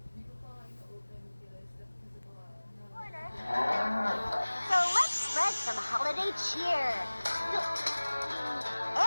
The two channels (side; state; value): both; inverted; correlation -1.00